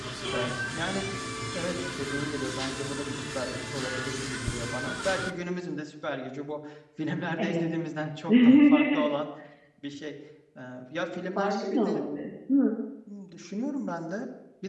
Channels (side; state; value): both; identical; correlation 1.00